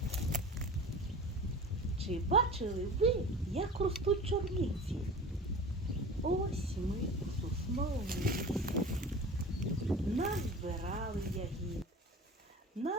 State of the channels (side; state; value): both; normal; correlation 0.37